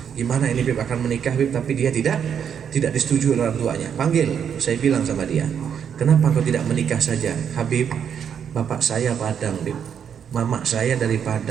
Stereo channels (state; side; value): quieter; left; 8.0 dB